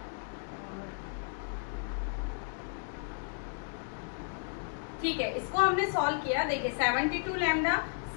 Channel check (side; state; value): right; silent; digital silence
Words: ठीक है, इसको हमने सॉल्व किया। देखिए 72 लैम्डा